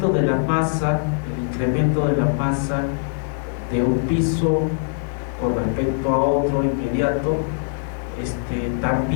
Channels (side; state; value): right; silent; digital silence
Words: de la masa de un piso con respecto a otro inmediato,